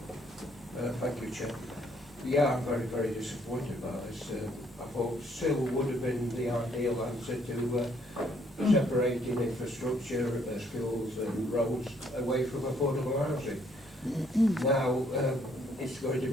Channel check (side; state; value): both; normal; correlation 0.67